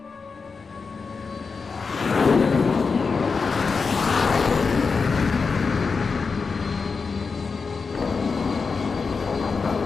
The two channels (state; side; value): quieter; right; 4.9 dB